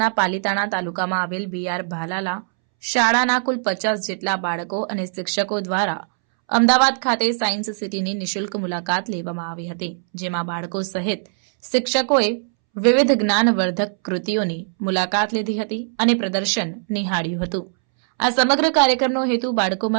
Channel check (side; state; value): left; silent; 65 dB below the other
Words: પાલીતાણા તાલુકામાં આવેલ બીઆર ભાલાલા શાળાના કુલ 50 જેટલા બાળકો અને શિક્ષકો દ્વારા અમદાવાદ ખાતે સાયન્સ સિટીની નિઃશુલ્ક મુલાકાત લેવામાં આવી હતી, જેમાં બાળકો સહિત શિક્ષકોએ વિવિધ જ્ઞાનવર્ધક કૃતિઓની મુલાકાત લીધી હતી અને પ્રદર્શન નિહાળ્યું હતું। આ સમગ્ર કાર્યક્રમનો હેતુ